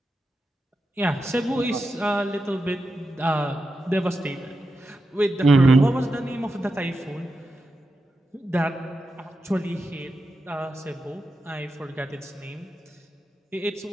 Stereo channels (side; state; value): both; normal; correlation 0.89